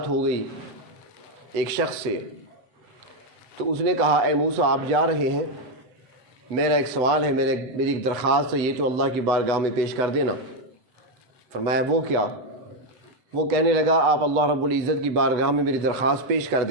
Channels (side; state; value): left; late; 8.1 ms